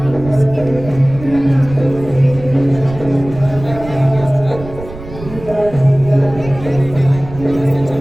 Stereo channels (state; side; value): noise; right; rumble, 14 dB below the sound